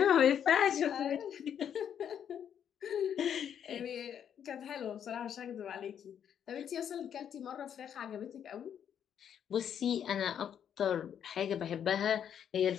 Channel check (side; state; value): right; quieter; 8.8 dB